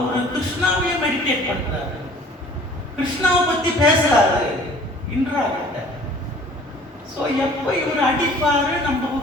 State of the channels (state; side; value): normal; both; correlation 0.50